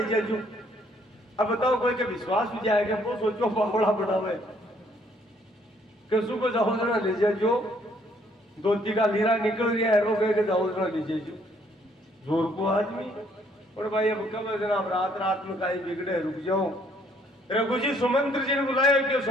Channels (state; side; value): normal; both; correlation 0.66